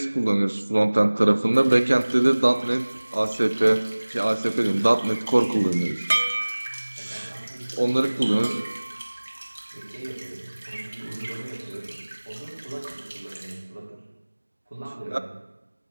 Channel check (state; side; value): inverted; both; correlation -1.00